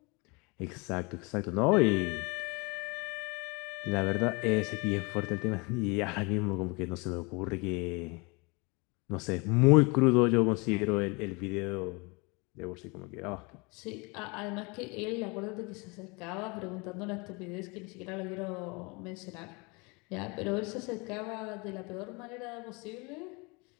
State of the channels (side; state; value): right; quieter; 28.5 dB